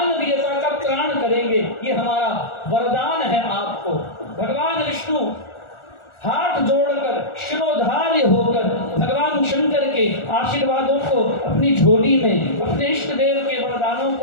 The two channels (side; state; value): right; late; 1.4 ms